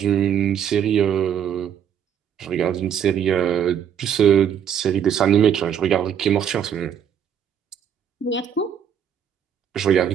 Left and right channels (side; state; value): left; quieter; 8.6 dB